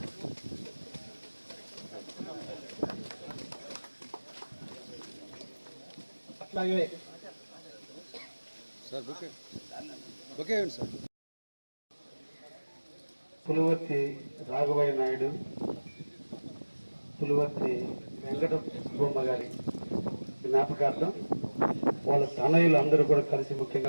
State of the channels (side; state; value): both; inverted; correlation -1.00